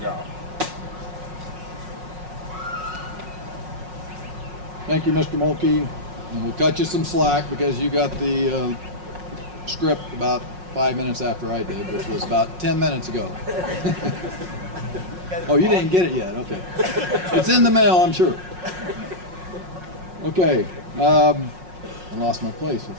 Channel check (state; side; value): late; left; 5.5 ms